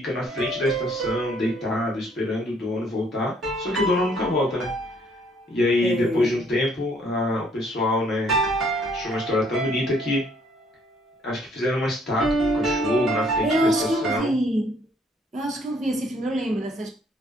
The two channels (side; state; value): both; normal; correlation 0.64